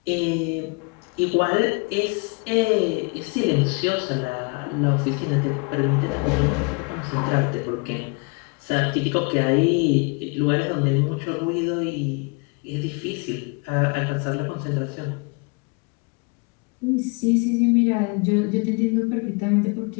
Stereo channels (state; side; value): quieter; right; 31.3 dB